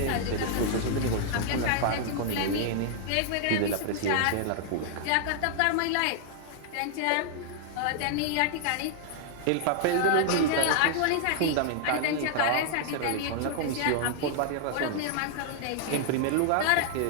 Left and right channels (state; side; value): different; both; correlation 0.00